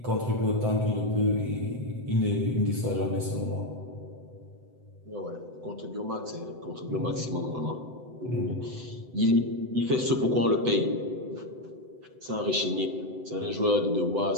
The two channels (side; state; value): left; late; 7.9 ms